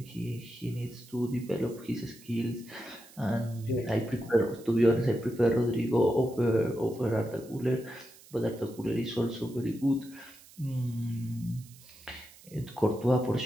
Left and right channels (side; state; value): right; noise; hiss, 22 dB below the sound